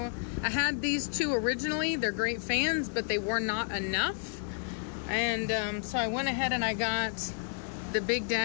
I had these two originally. They're great fans, but they were not enough. And so I went ahead and I got the Big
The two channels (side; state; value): right; silent; digital silence